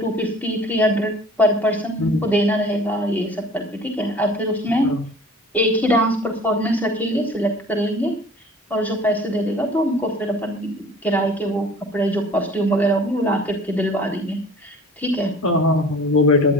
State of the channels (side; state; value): both; normal; correlation 0.47